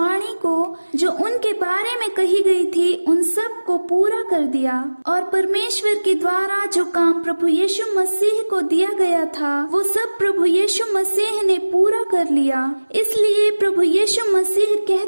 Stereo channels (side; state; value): both; inverted; correlation -1.00